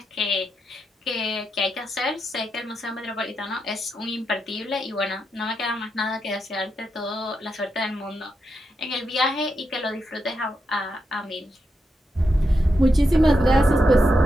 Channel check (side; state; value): both; normal; correlation 0.85